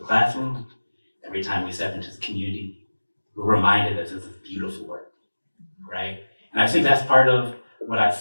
every time we step into the community, we're reminded that this is beautiful work, right? And I think that's part of what I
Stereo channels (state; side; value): inverted; both; correlation -1.00